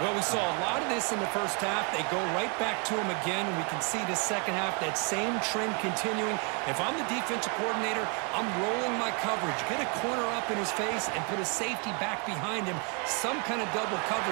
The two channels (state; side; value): quieter; left; 36.1 dB